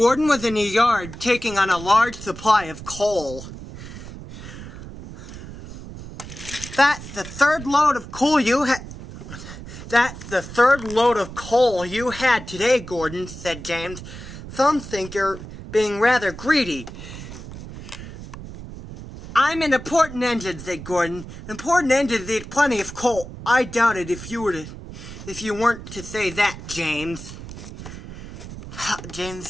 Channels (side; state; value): right; noise; rumble, 12 dB below the sound